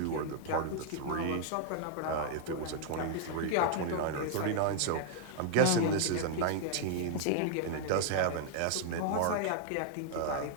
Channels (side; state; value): both; different; correlation -0.01